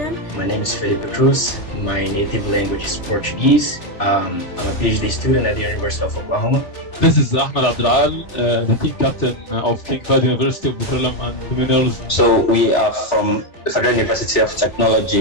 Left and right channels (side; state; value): right; late; 3.5 ms